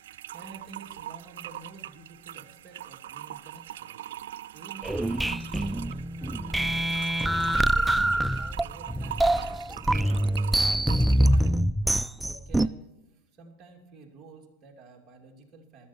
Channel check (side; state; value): both; normal; correlation 0.92